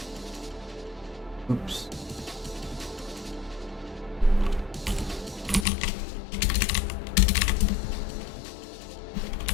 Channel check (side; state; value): right; drops out; at 5.7 s